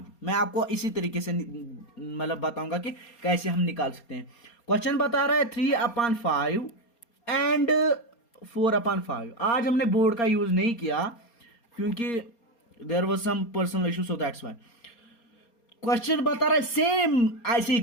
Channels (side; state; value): right; late; 4.3 ms